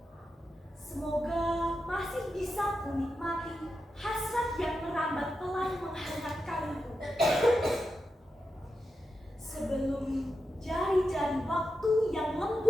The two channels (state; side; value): normal; both; correlation 0.88